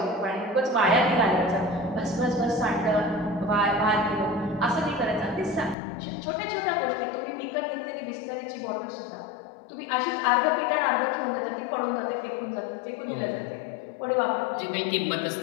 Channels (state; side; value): drops out; right; at 5.8 s